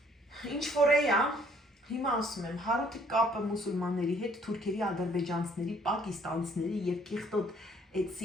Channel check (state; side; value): normal; both; correlation 0.62